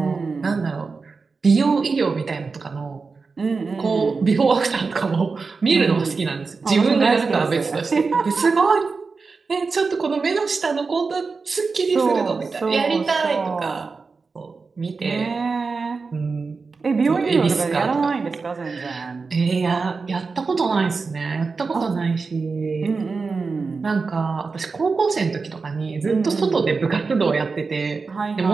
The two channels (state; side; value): quieter; left; 4.5 dB